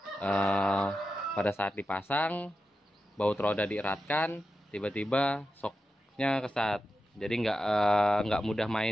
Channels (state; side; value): normal; both; correlation 0.90